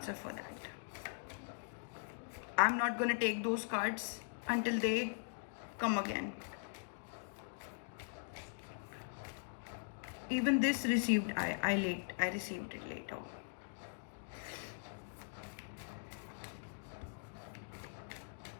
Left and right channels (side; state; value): right; silent; digital silence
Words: for that. I'm not going to take those cards until they come again. Even this received, I received it later.